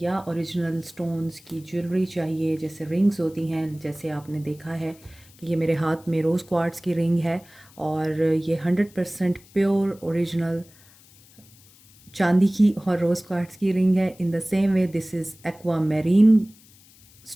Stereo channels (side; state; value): left; noise; hiss, 26 dB below the sound